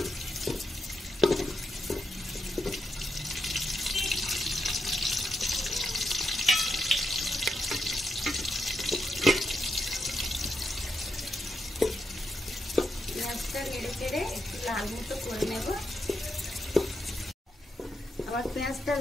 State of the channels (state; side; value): normal; both; correlation 0.83